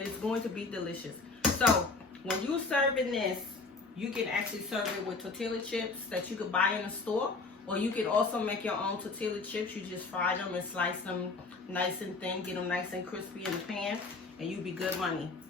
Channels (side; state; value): right; quieter; 3.9 dB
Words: it's going to be delicious. So when you're serving this, you can actually serve it with tortilla chips that you could buy in the store. Or you can also make your own tortilla chips. You just fry them and slice them nice and thin. Get them nice and crispy in the pan. And you be good money.